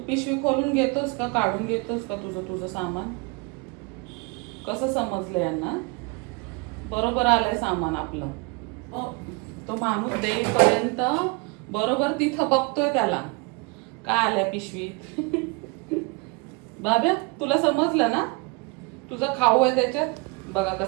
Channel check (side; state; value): left; quieter; 28.1 dB